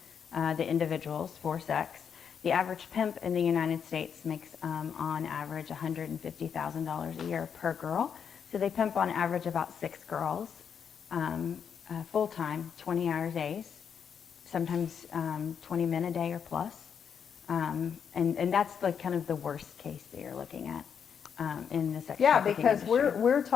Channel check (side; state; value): right; quieter; 7.3 dB